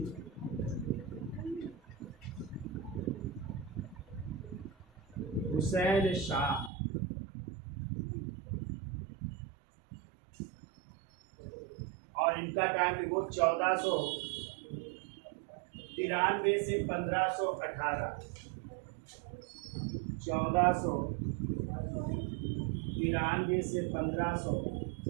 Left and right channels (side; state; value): left; drops out; at 6.7 s